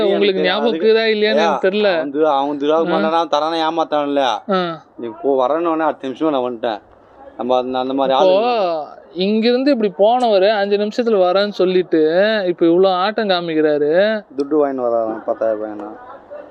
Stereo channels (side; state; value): both; identical; correlation 1.00